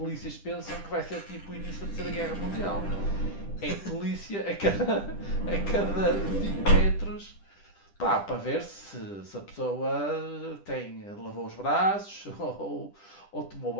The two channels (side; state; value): right; late; 10 ms